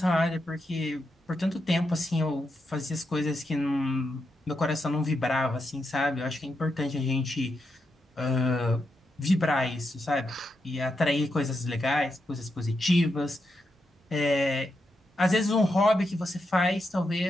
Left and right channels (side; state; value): both; normal; correlation 0.85